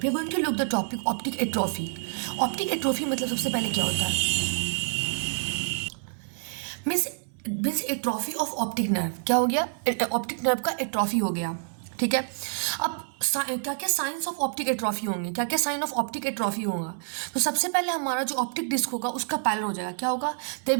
are going to look the topic optic atrophy. Optic atrophy मतलब सबसे पहले क्या होता है? Means means atrophy of optic nerve. क्या हो गया? ऑप्टिक नर्व का एट्रोफी हो गया। ठीक है। अब क्या क्या साइंस ऑफ ऑप्टिक एट्रोफी होंगे, क्या क्या साइन ऑफ ऑप्टिक एट्रोफी होगा? तो सबसे पहले हमारा जो ऑप्टिक डिस्क होगा उसका पैलर हो जाएगा। क्या होगा? There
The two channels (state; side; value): silent; left; 60 dB below the other